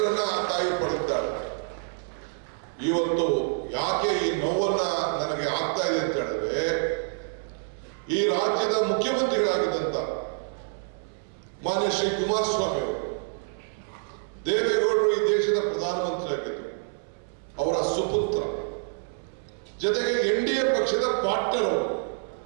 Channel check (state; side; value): silent; left; 60 dB below the other